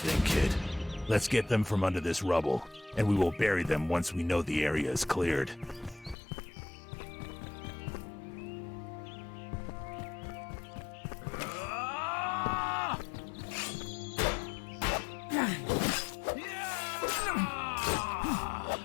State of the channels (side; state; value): right; drops out; at 6.2 s